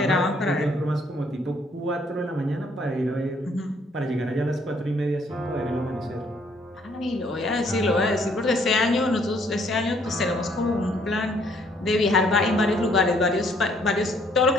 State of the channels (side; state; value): both; normal; correlation 0.65